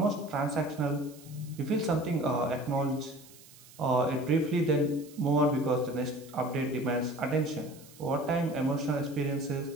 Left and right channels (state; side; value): noise; right; hiss, 22 dB below the sound